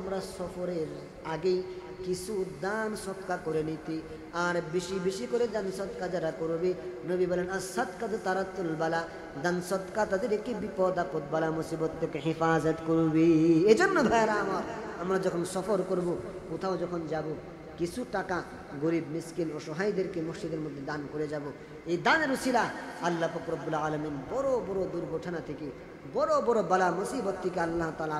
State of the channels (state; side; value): identical; both; correlation 1.00